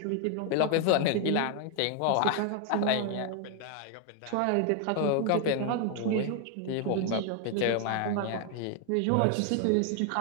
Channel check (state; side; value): different; both; correlation 0.01